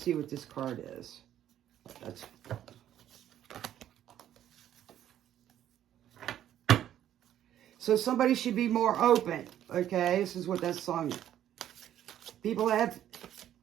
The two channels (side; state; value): left; quieter; 11.3 dB